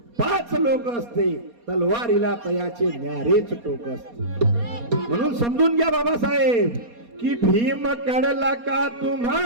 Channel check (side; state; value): left; late; 4.2 ms